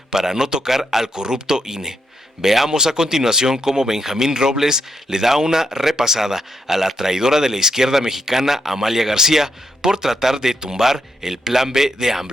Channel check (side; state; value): both; normal; correlation 0.80